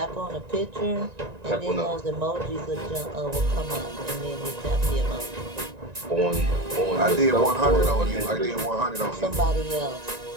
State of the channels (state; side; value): late; left; 1.9 ms